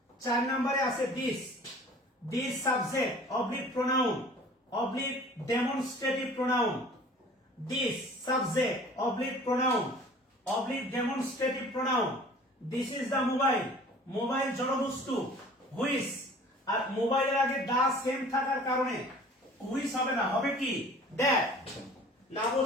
4 নম্বরে আছে this, this subject oblique pronoun, oblique demonstrative pronoun. This subject oblique pronoun, oblique demonstrative pronoun. This is the mobile, mobile জড়বস্তু। হুইচ, আর মোবাইলের আগে দা সেম থাকার কারণে হুইচ হবে না, হবে কি দ্যাট। না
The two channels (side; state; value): both; normal; correlation 0.47